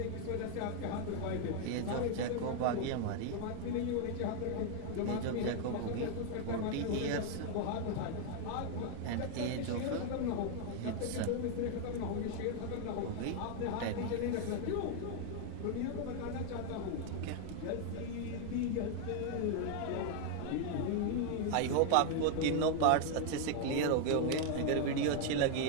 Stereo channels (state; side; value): different; both; correlation 0.00